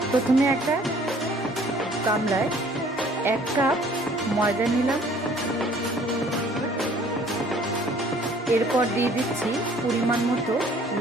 প্রথমে একটা গামলায় 1 কাপ ময়দা নিলাম, এরপর দিয়ে দিচ্ছি পরিমাণ মতো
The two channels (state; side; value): normal; both; correlation 0.56